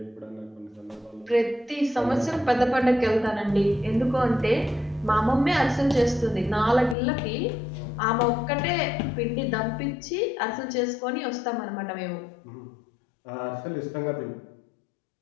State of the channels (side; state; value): right; drops out; at 7.0 s